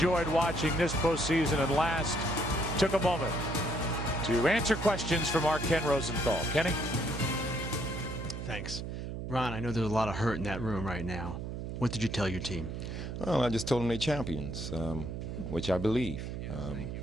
watching this postseason and last, took a moment to answer questions from our Ken Rosenthal. Kenny? Thanks. Ron, I know there's a lot of hurt in that room right now. What did you tell your team? Well, I just told them they're champions, which I believe.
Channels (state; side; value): noise; right; hum, 6 dB below the sound